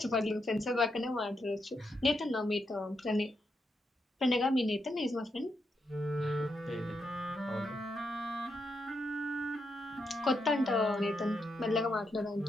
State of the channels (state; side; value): normal; both; correlation 0.82